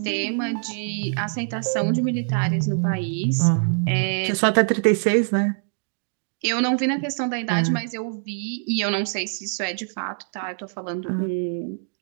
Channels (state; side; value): silent; left; digital silence